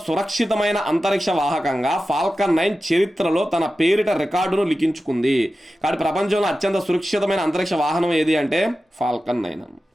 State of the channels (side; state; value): both; normal; correlation 0.93